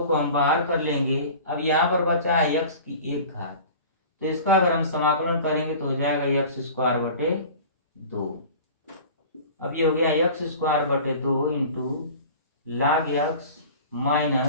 को हम बाहर कर लेंगे। अब यहाँ पर बचा है x की 1 घात, तो इसका अगर हम समाकलन करेंगे तो हो जाएगा x स्क्वायर बटे 2। अब ये हो गया x स्क्वायर बटे 2 into log x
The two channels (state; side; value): inverted; both; correlation -0.40